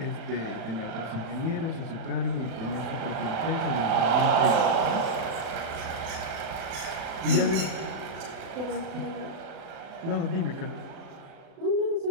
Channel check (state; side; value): late; left; 37 ms